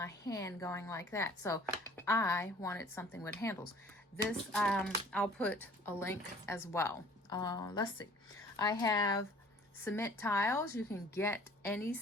hand going like that. So I wanted something with handles. This, I'll put a link as well. Let's see. I have cement tiles. You can get any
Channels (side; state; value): both; normal; correlation 0.51